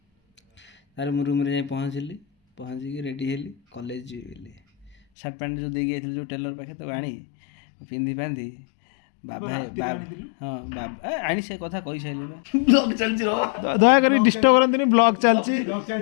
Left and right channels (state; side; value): drops out; right; at 5.0 s